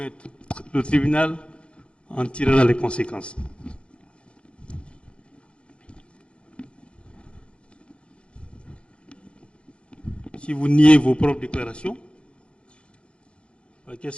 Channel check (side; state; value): right; late; 0.058 ms